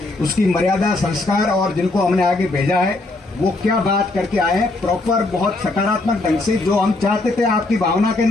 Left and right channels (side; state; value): right; quieter; 3.0 dB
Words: उसकी मर्यादा, संस्कार और जिनको हमने आगे भेजा है वो क्या बात करके आए हैं, प्रॉपर बहुत सकारात्मक ढंग से जो हम चाहते थे आपकी भावना के